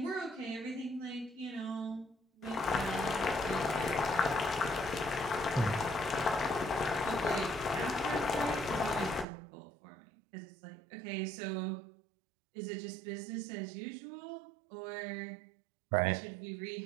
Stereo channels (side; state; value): left; drops out; at 9.2 s